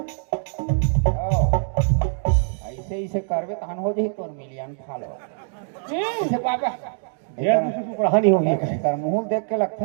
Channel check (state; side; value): silent; left; digital silence